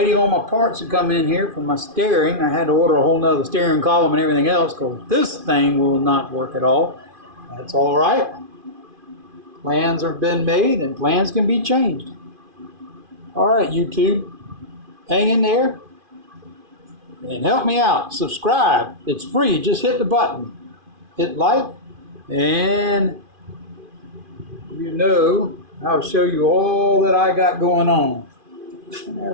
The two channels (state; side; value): late; left; 2.5 ms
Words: on my parts to come in here for my steering. I had to order a whole nother steering column and everything else because this thing will not work at all. That's all right. Plans have been made and plans can be changed. All right, YouTube, hang in there and help me out. Subscribe. It's free. Just hit the button. Hit like, and I'll show you all that I got going on.